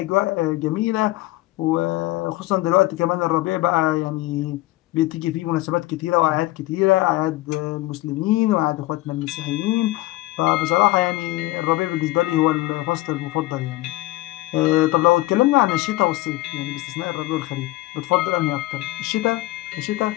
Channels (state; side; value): quieter; right; 18.6 dB